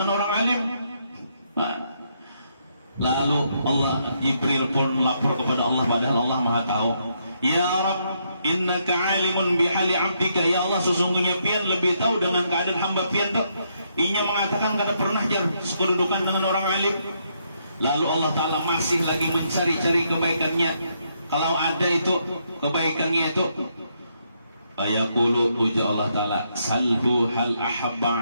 orang alim. Lalu Jibril pun lapor kepada Allah, padahal Allah Maha tahu. Ya Rabb, innaka alimun bihali abdika. Ya Allah, sesungguhnya pian lebih tahu dengan keadaan hamba pian tuh. Inya mengatakan kada pernah jar sekedudukan dengan orang alim. Lalu Allah Ta'ala masih lagi mencari-cari kebaikannya. Kalau ada itu kebaikannya itu, ayaqulu, uja Allah Ta'ala, salhu hal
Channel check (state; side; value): inverted; both; correlation -0.76